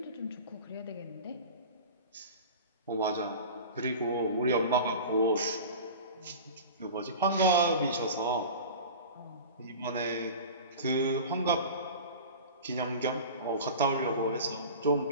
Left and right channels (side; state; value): both; inverted; correlation -0.35